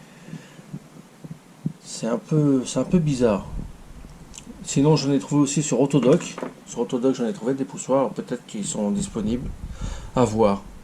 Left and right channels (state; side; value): identical; both; correlation 1.00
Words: c'est un peu bizarre. Sinon j'en ai trouvé aussi sur Autodoc. Sur Autodoc j'en ai trouvé des poussoirs, peut-être qu'ils sont disponibles. À voir.